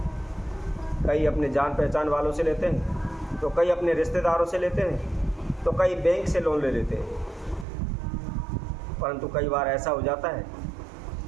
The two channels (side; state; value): left; drops out; at 7.7 s